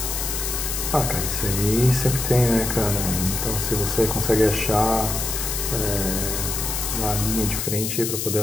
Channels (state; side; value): noise; left; hiss, 2 dB below the sound